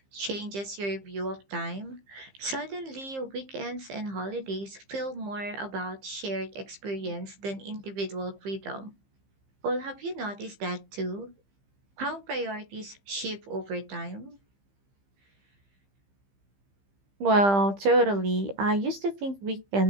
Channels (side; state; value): left; late; 15 ms